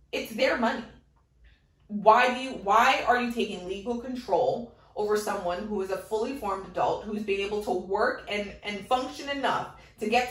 it's their money. Why are you taking legal control over someone who is a fully formed adult, who's been able to work and function enough to get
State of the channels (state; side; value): identical; both; correlation 1.00